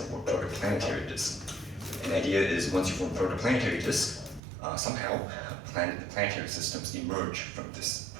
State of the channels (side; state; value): left; drops out; at 4.4 s